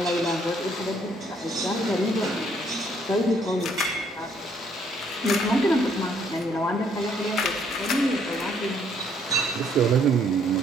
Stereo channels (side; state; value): both; normal; correlation 0.67